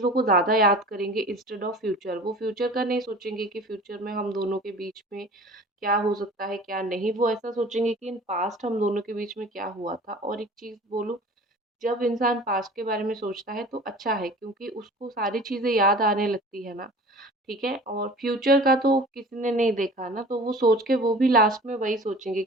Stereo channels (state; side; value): normal; both; correlation 0.43